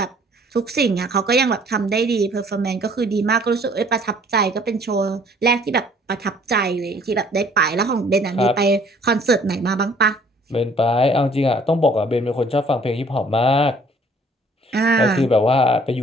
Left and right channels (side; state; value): both; normal; correlation 0.57